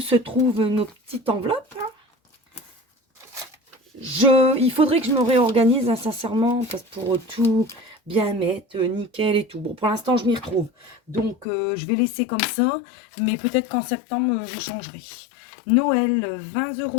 trouvent nos petites enveloppes. Hein. Il faudrait que je me réorganise, hein, sincèrement, parce que pour tout bien mettre, nickel et tout. Bon, pour l'instant, je m'y retrouve. Donc, je vais laisser comme ça. Mais peut-être qu'en septembre, je changerai. Noël, 20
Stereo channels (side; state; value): right; drops out; at 11.5 s